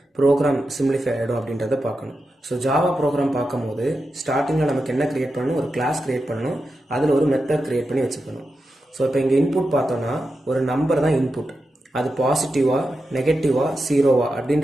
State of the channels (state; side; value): normal; both; correlation 0.89